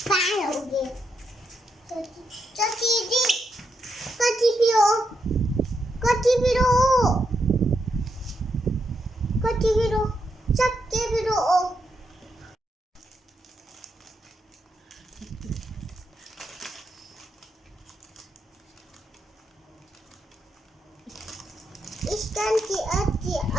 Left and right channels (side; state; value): both; normal; correlation 0.82